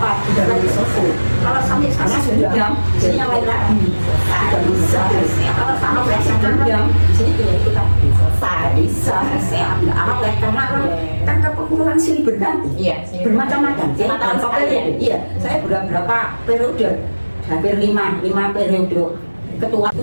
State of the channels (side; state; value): both; inverted; correlation -1.00